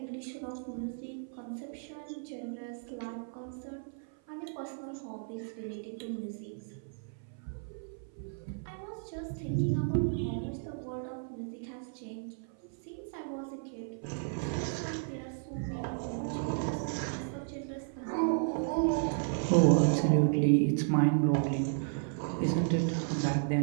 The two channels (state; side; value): silent; left; 55 dB below the other